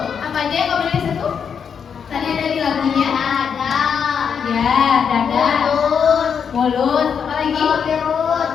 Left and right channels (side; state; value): right; quieter; 7.0 dB